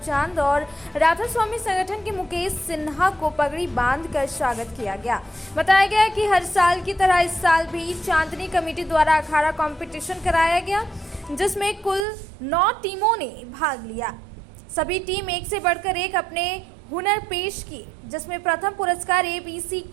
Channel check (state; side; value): drops out; left; at 12.1 s